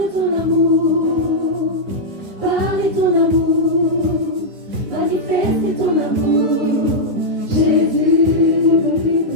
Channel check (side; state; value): left; late; 9.7 ms